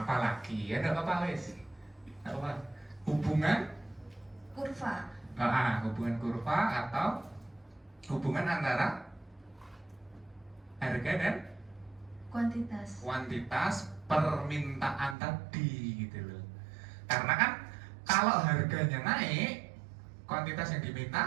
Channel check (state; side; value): drops out; left; at 15.2 s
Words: apa lagi ya, enggak apa-apa wes. Apa? Hubungan Kurva. hubungan kurva atau hubungan antara harga dan kuantitas permintaan tadi gitu loh. Karena kan kalau harganya naik, kuantitas yang